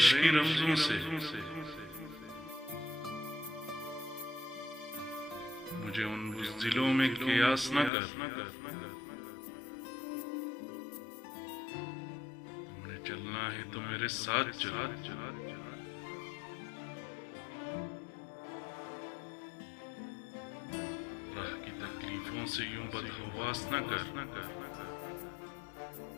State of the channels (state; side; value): drops out; right; at 7.9 s